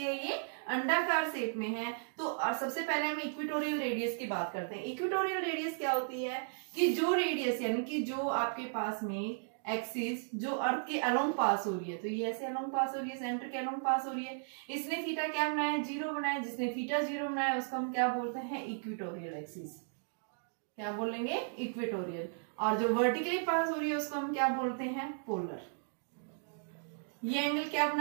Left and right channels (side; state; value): left; silent; digital silence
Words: ये अंडाकार शेप में है। तो सबसे पहले हम इक्वेटोरियल रेडियस की बात करते हैं। इक्वेटोरियल रेडियस क्या होती है कि जो रेडियस यानी कि जो आपके पास में एक्सिस जो अर्थ के अलोंग पास हो रही है, तो ये ऐसे अलोंग पास हो रही है, सेंटर के अलोंग पास हो रही है। इसने थीटा क्या बनाया, 0 बनाया, जिसने थीटा 0 बनाया उसको हम क्या बोलते हैं, इक्वेटोरियल एक्सिस, क्या बोलेंगे, इक्वेटोरियल। और जो वर्टिकली पास हो रही है उसको हम क्या बोलते हैं, पोलर। ये एंगल क्या